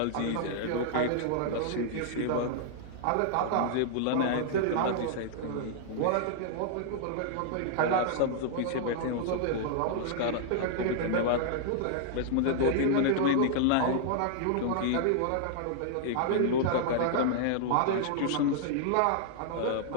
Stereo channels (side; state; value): both; different; correlation -0.01